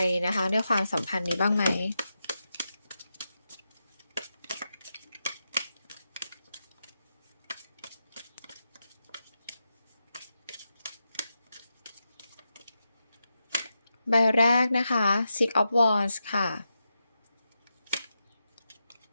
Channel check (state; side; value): inverted; both; correlation -0.87